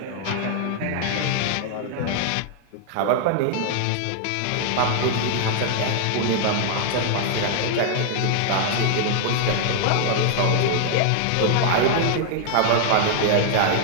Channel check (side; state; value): both; different; correlation 0.00